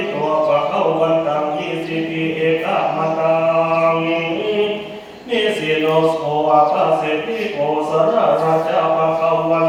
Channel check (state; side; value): identical; both; correlation 1.00